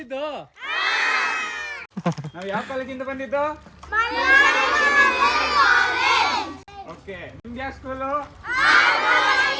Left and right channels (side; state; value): both; identical; correlation 1.00